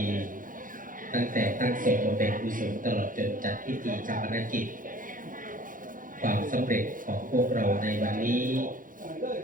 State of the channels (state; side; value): late; left; 0.39 ms